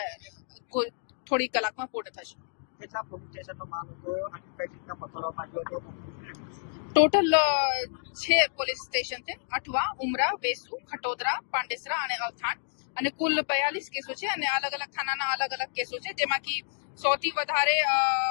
થોડી કલાકમાં પૂર્ણ થશે. ટોટલ 6 પોલીસ સ્ટેશન છે: અઠવા, ઉમરા, વેસુ, ખટોદરા, પાંડેસરા અને અલથાણ. અને કુલ 42 કેસો છે અને અલગ અલગ થાનાના અલગ અલગ કેસો છે, જેમાંથી સૌથી વધારે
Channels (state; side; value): silent; right; digital silence